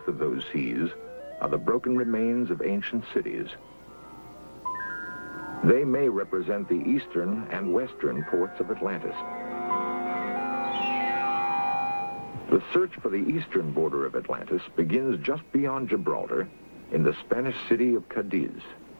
of those seas are the broken remains of ancient cities. They may represent the eastern and western ports of Atlantis. The search for the eastern border of Atlantis begins just beyond Gibraltar in the Spanish city of Cadiz.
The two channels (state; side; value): inverted; both; correlation -1.00